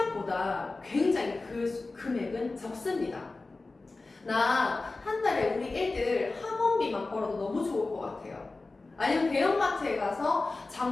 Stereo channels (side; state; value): right; quieter; 3.5 dB